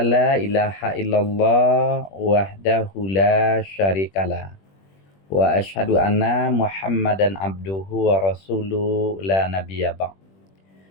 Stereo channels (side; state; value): right; late; 21 ms